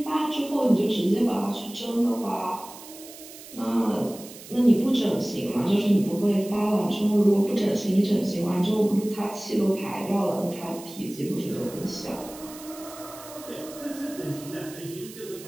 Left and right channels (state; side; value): noise; right; hiss, 16 dB below the sound